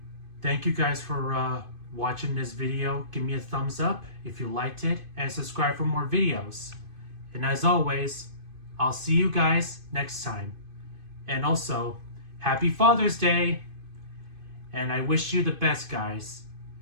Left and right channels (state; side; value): late; left; 2.5 ms